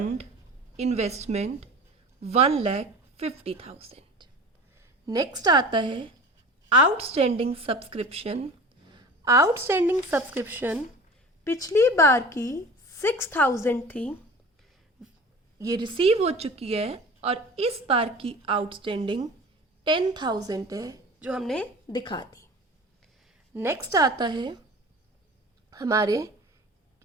investment 1,50,000। नेक्स्ट आता है आउटस्टैंडिंग सब्सक्रिप्शन। आउटस्टैंडिंग सब्सक्रिप्शन पिछली बार की 6,000 थी, ये रिसीव हो चुकी है, और इस बार की आउटस्टैंडिंग 10,000 है, जो हमने दिखा दी। नेक्स्ट आता है हमारे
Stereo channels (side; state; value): both; normal; correlation 0.38